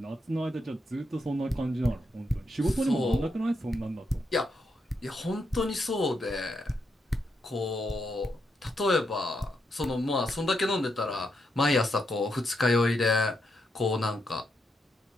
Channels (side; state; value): both; normal; correlation 0.81